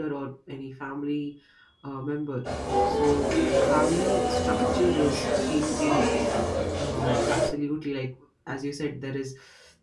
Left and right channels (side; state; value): both; identical; correlation 1.00